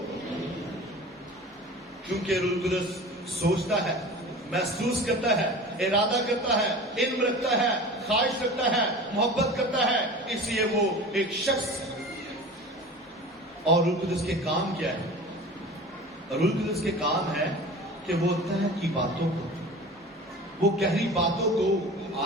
کیونکہ روح القدس سوچتا ہے، محسوس کرتا ہے، ارادہ کرتا ہے، علم رکھتا ہے، خواہش رکھتا ہے، محبت کرتا ہے، اس لیے وہ ایک شخص ہے۔ اور روح القدس کے کام کیا ہے؟ روح القدس کے کام ہے کہ وہ طے کی باتوں کو، وہ گہری باتوں کو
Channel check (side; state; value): both; normal; correlation 0.37